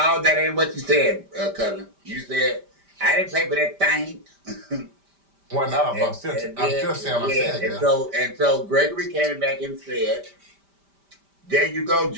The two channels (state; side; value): late; left; 5.1 ms